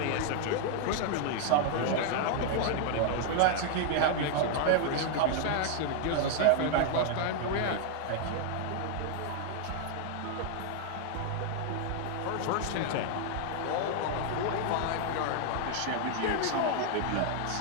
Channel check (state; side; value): different; both; correlation 0.00